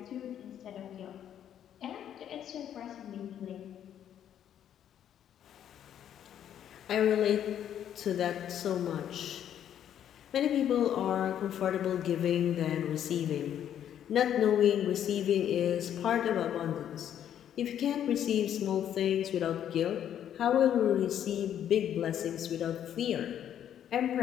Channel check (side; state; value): right; quieter; 10.0 dB